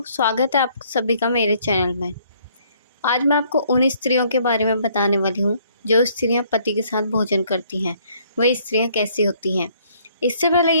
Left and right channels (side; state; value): both; inverted; correlation -0.63